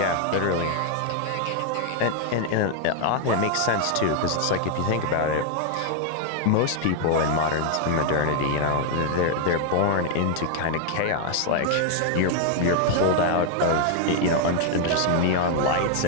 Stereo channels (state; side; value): different; both; correlation 0.00